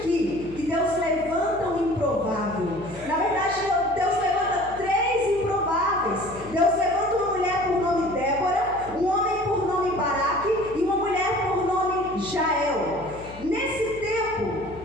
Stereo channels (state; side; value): noise; left; hum, 17 dB below the sound